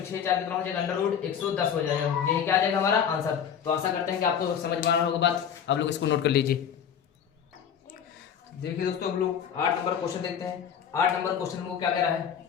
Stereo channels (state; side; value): quieter; right; 8.1 dB